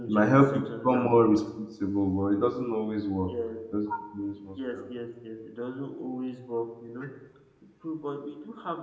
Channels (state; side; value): identical; both; correlation 1.00